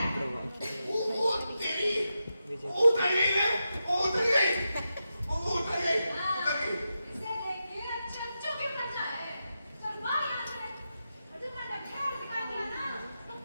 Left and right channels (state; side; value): inverted; both; correlation -0.89